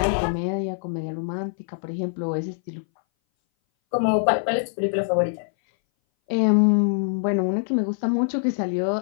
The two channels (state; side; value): silent; right; 60 dB below the other